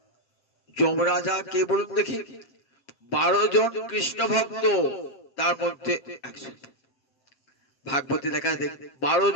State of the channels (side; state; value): right; late; 7.3 ms